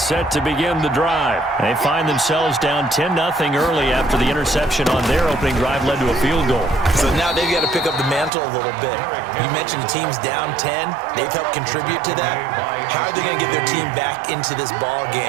set to begin the drive. They find themselves down 10-0 early after the interception on their opening drive led to a field goal. So now they've got to pick up the mantle a little bit. You mentioned the team's down 10. They've helped contribute to that. How are they going to get their team back into this ball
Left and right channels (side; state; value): left; drops out; at 8.3 s